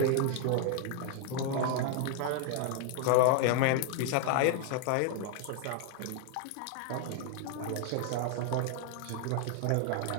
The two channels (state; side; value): different; both; correlation 0.00